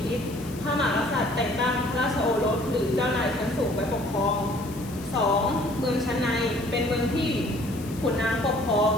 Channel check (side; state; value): left; noise; hiss, 18 dB below the sound